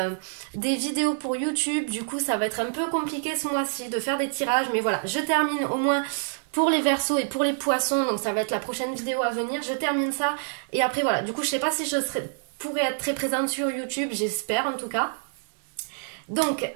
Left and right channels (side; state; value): left; silent; digital silence